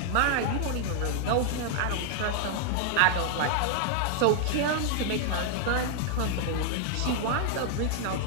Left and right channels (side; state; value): both; different; correlation 0.00